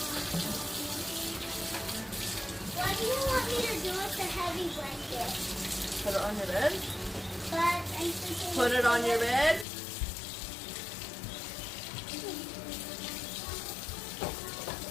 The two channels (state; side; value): drops out; right; at 9.7 s